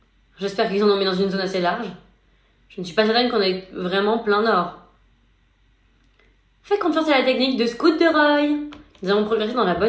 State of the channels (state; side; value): identical; both; correlation 1.00